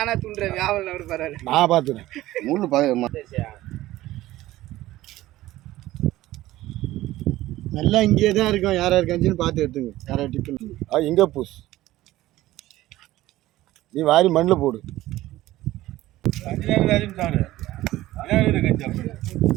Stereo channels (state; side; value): quieter; left; 16.1 dB